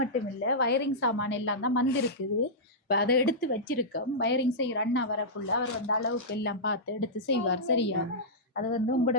இல்லை வயரிங் சாமான் எல்லாம் தான் வந்திருக்குது இப்போ அதை எடுத்து வச்சிருக்கோம் வயரிங் செய்கிற அண்ணா வரக்குள்ள அவர் வந்து அளவுக்கு எல்லாம் பார்த்து எடுத்து செய்வார் சரியா அது வந்து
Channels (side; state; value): both; normal; correlation -0.13